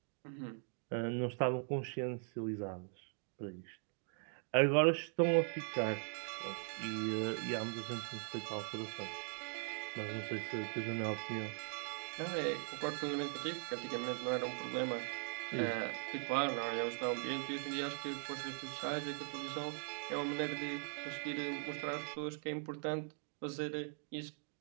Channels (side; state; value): left; silent; 51 dB below the other